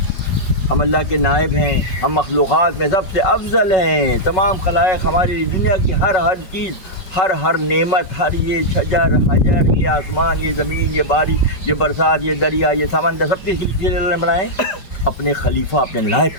ہم اللہ کے نائب ہیں, ہم مخلوقات میں سب سے افضل ہیں. تمام خلائق ہماری دنیا کی ہر چیز, ہر نعمت, ہر یہ شجر حجر, یہ آسمان, یہ زمین, یہ بارش, یہ برسات, یہ دریا, یہ سمندر, سب کے لیے اللہ نے بنائے, اپنے خلیفہ اپنے نائب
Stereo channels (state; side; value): late; right; 5.3 ms